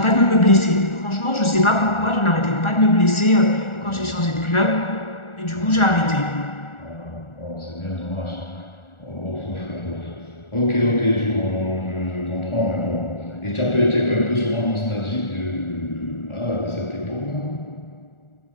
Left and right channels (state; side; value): late; right; 1.4 ms